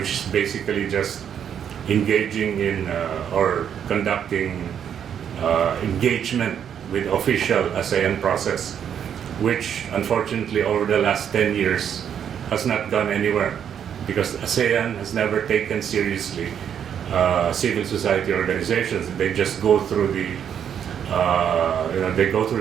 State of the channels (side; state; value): left; quieter; 8.6 dB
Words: is basically just engaging in or conducting engagement with official ASEAN process, which unfortunately over the last 10 years has not gone anywhere, because ASEAN has never taken seriously civil society organizations. They just go through they go through